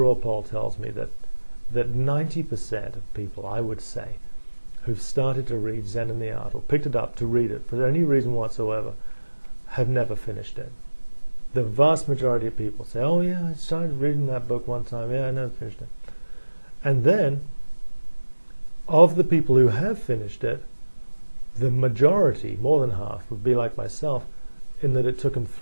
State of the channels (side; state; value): both; inverted; correlation -1.00